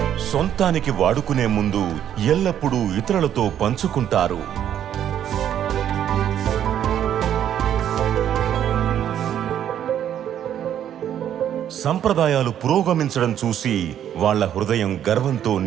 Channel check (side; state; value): left; quieter; 10.2 dB